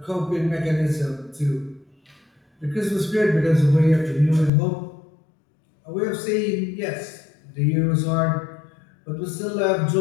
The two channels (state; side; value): drops out; right; at 4.5 s